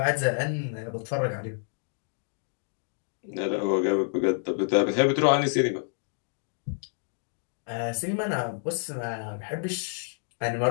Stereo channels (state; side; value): silent; right; digital silence